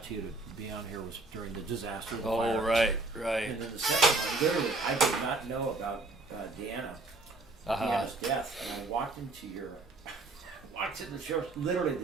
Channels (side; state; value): left; quieter; 3.3 dB